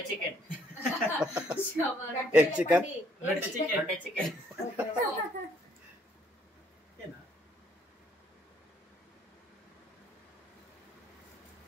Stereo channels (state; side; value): normal; both; correlation 0.66